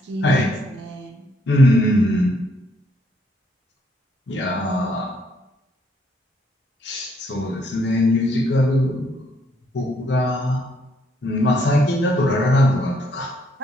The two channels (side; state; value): both; normal; correlation 0.71